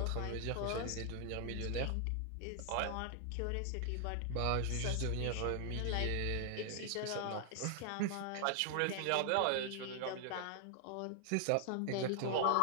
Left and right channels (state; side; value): different; both; correlation 0.00